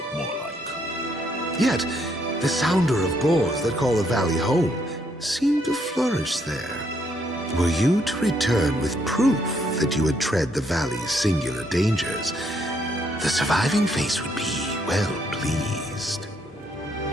more like. Yet, the sounder of boars that call the valley home seem to flourish there. Were you to return with proof that you had tread the valley's singular dangers, the surviving face would be well pleased.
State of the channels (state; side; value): normal; both; correlation 0.72